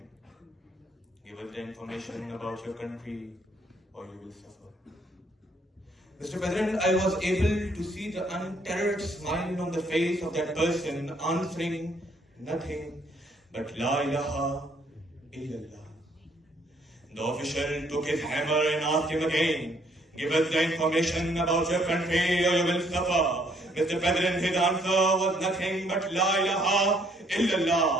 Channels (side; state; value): both; normal; correlation 0.66